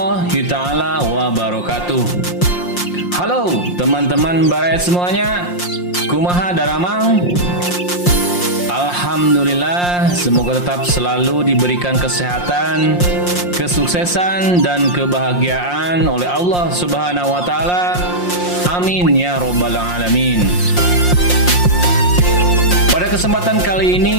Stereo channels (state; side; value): late; right; 5.6 ms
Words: ta'ala wabarakatuh. Halo teman-teman baraya semuanya, kumaha daramang? Alhamdulillah, semoga tetap selalu diberikan kesehatan, kesuksesan, dan kebahagiaan oleh Allah Subhanahu wa Ta'ala. Amin ya Rabbal 'Alamin. Pada kesempatan kali